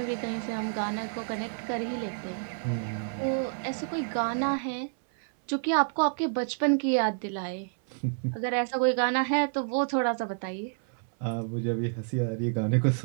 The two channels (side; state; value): left; silent; 58 dB below the other